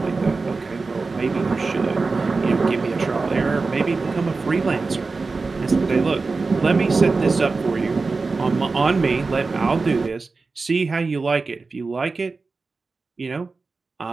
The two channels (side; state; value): left; quieter; 4.0 dB